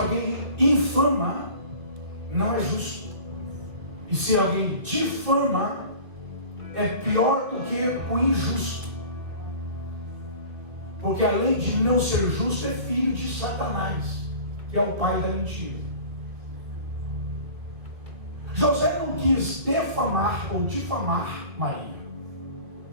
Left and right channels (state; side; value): late; left; 2.1 ms